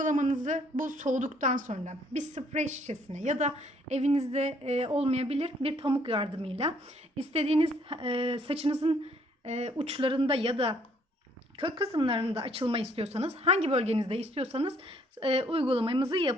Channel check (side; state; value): both; normal; correlation 0.64